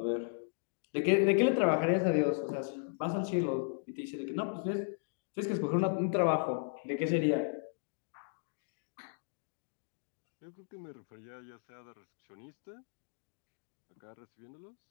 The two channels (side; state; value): right; silent; digital silence